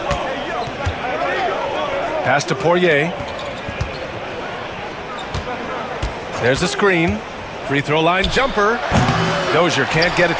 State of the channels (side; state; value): both; identical; correlation 1.00